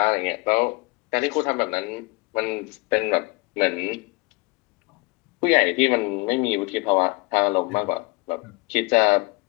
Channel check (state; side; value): quieter; right; 25.9 dB